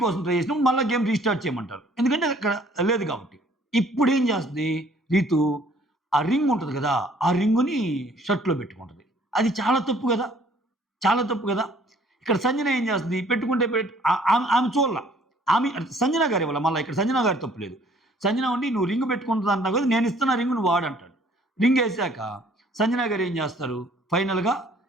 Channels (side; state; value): both; normal; correlation 0.58